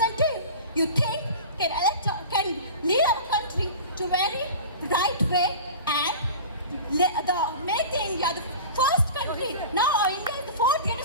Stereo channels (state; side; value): inverted; both; correlation -0.35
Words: you think can lead our country to very right way and make the India the first country. Now India is the 4th